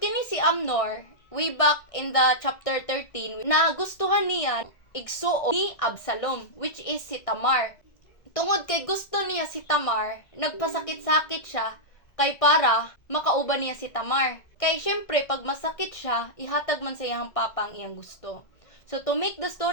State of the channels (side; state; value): right; late; 1.6 ms